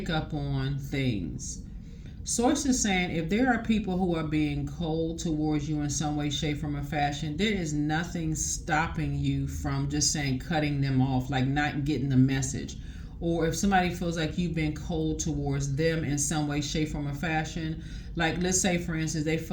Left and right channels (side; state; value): both; identical; correlation 1.00